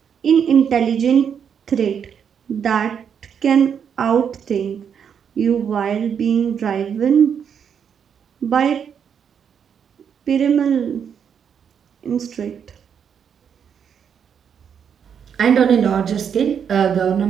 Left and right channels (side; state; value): left; quieter; 7.6 dB